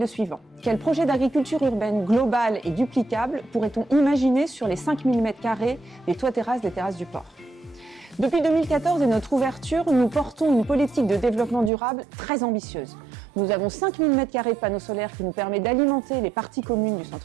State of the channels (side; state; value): left; drops out; at 11.7 s